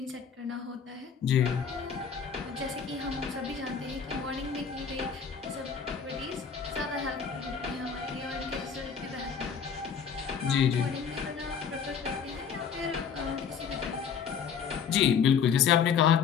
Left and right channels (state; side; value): quieter; right; 6.9 dB